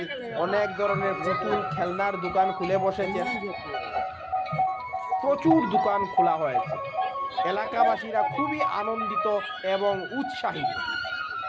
অনেক ধরনের পুতুল খেলনার দোকান খুলে বসেছেন। প্রচুর দোকান খোলা হয়েছে। এলাকাবাসীরা খুবই আনন্দিত এবং উৎসাহিত।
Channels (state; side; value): identical; both; correlation 1.00